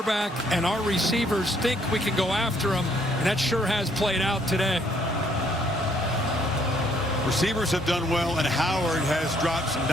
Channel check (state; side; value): normal; both; correlation 0.67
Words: and our receivers think we can go after them, and that sure has played out today. Receivers have done well, and Howard has dropped some